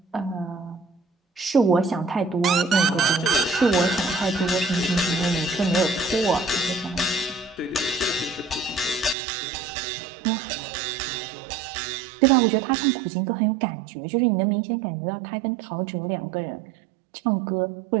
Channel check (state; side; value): drops out; left; at 9.2 s